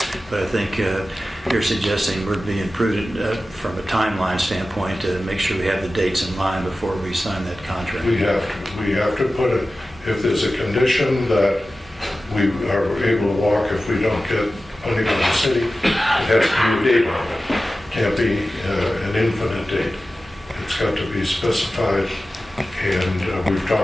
but I think you're suggesting we're being prudent from a timeline standpoint to make sure we have the dates in line before we sign that contract. We have to put it, if there's a condition that we are able to walk if we don't get funding from the city, it has to be a date on it. It can't be an infinite date. It's got to be specified, and we've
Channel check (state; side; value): normal; both; correlation 0.95